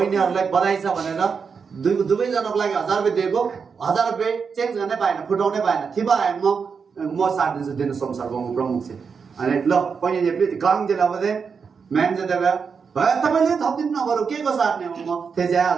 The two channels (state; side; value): quieter; left; 5.8 dB